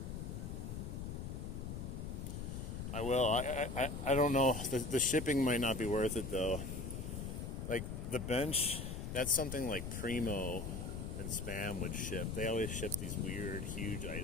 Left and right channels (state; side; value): noise; left; rumble, 5 dB below the sound